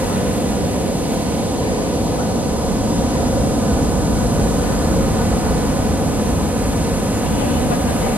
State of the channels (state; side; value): normal; both; correlation 0.74